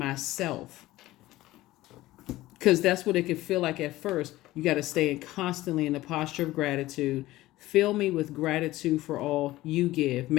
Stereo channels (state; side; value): quieter; right; 17.0 dB